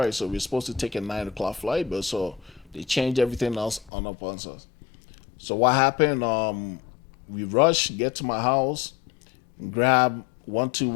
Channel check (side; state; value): right; drops out; at 3.9 s